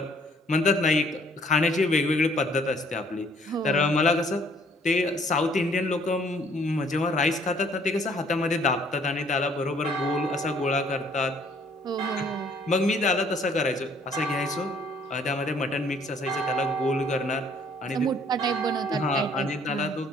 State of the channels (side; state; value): both; normal; correlation 0.61